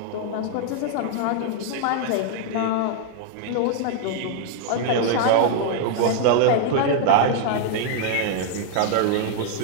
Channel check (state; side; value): different; both; correlation 0.00